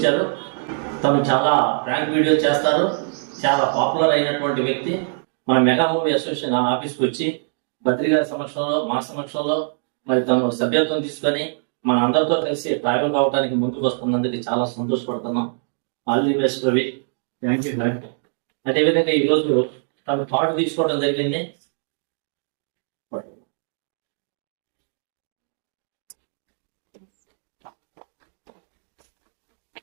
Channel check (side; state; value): left; silent; digital silence